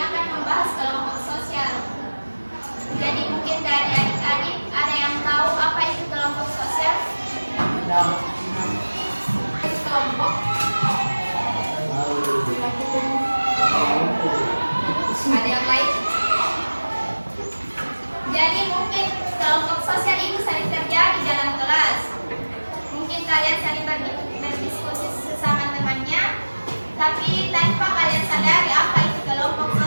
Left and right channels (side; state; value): both; inverted; correlation -1.00